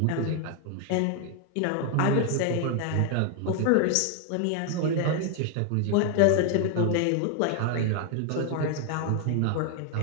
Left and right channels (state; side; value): different; both; correlation 0.01